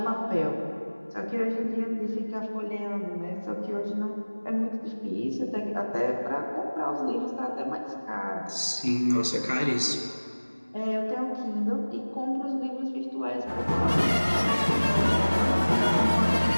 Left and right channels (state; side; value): inverted; both; correlation -1.00